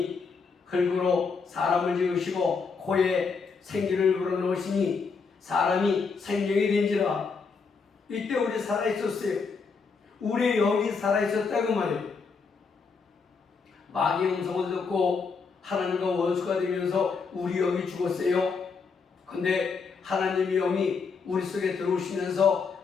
흙으로 사람을 지으시고 코에 생기를 불어넣으시니 사람이 생명이 된지라. 이때 우리 살아있었어요. 우리의 영이 살아있었다고 말이에요. 마귀의 음성을 듣고 하나님과 원수가 되면서 우리 영이 죽었어요. 근데 하나님의 영이 우리 속에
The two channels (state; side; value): quieter; right; 5.1 dB